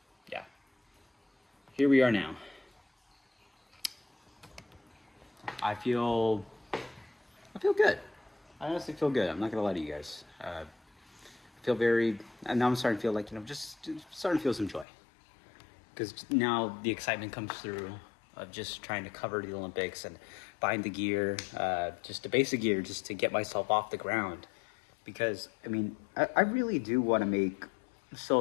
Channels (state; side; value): drops out; right; at 14.9 s